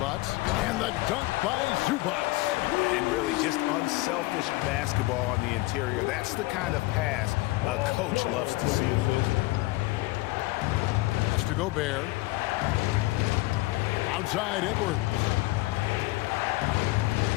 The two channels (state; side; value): quieter; right; 21.0 dB